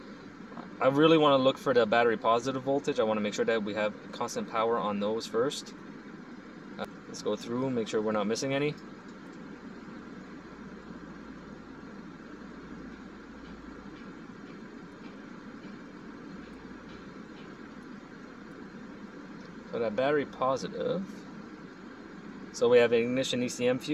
I really want to look for the battery positive voltage. I want to make sure that we have constant power on those first. Let's go through and make sure we're not missing any. So that battery positive. So we have an ignition Ecm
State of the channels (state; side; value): identical; both; correlation 1.00